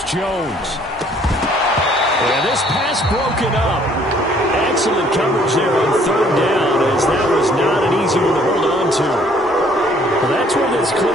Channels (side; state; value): both; normal; correlation 0.60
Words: Jones. And this pass broken up. Excellent coverage there on 3rd down, as that was not an easy one to hold on to. Well, that's where this